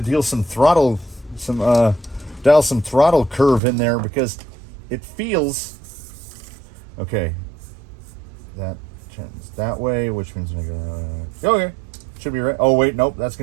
some throttle curve in there because it feels okay. That turns that way, which means I'm gonna okay. Should be right. Oh wait, nope, that's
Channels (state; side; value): drops out; left; at 3.6 s